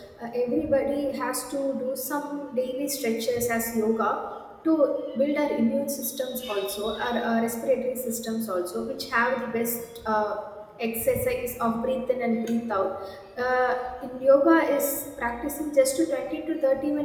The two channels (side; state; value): both; identical; correlation 1.00